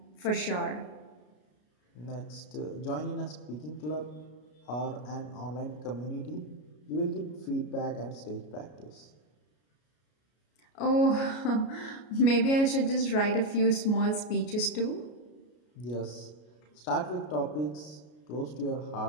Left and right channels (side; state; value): right; late; 33 ms